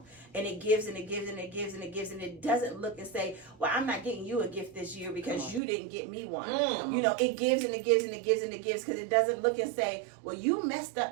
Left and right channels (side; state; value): left; drops out; at 5.6 s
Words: And it gives and it gives and it gives and it gives, and it doesn't look and say, well, I'm not getting you a gift this year because you didn't get me one. You know, it gives and it gives and it gives and it gives, because it doesn't look and say, well, you messed